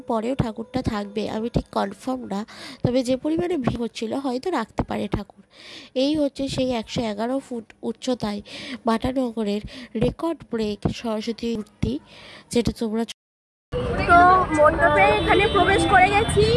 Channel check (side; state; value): both; identical; correlation 1.00